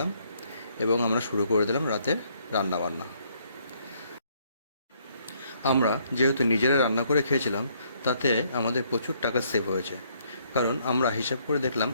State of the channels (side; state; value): both; inverted; correlation -0.68